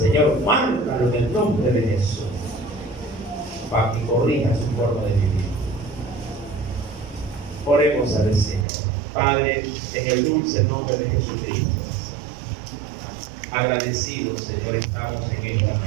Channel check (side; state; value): left; drops out; at 8.7 s